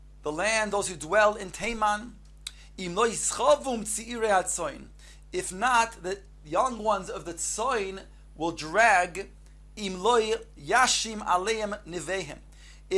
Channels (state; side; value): identical; both; correlation 1.00